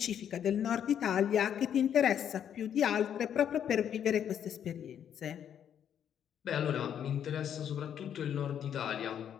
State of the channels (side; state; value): right; quieter; 9.2 dB